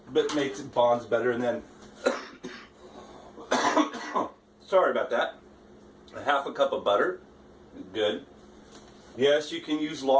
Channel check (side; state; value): both; identical; correlation 1.00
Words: But makes it bonds better. And then, sorry about that, 1/2 cup of butter. Good. Yes, you can use